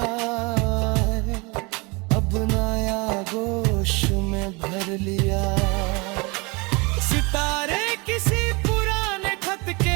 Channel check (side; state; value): left; quieter; 27.9 dB